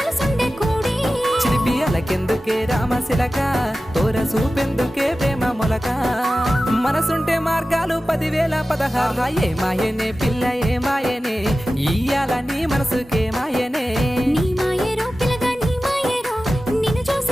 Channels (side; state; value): both; normal; correlation 0.95